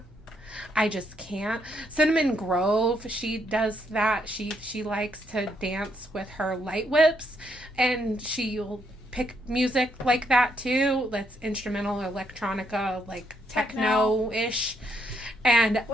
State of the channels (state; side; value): normal; both; correlation 0.75